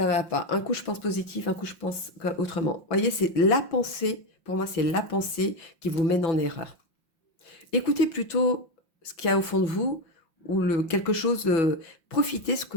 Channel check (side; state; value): right; late; 5.7 ms